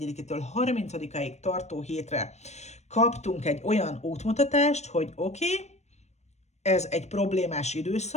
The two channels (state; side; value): late; right; 0.32 ms